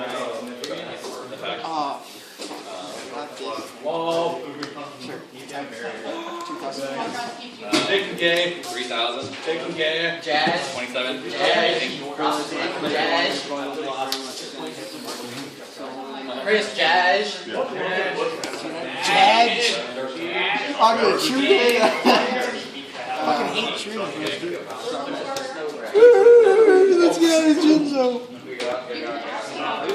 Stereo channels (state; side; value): identical; both; correlation 1.00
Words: Whoa. Sure. Taking game. 3,000. Taking game. Jazz. 27. Jazz. Chris Jazz. Jazz. I'm gonna shoot it. I fucking hate shooting. Let's get out of Jinzo.